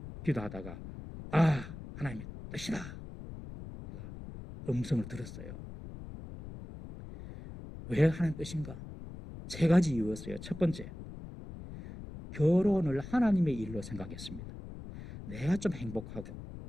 기도하다가 하나님의 뜻이다, 제가 음성을 들었어요. 왜 하나님 뜻인가? 3가지 이유였어요. 첫 번째, 결혼을 하나님의 일로 생각했습니다. 내가 좀 행복하고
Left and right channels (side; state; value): left; noise; rumble, 12 dB below the sound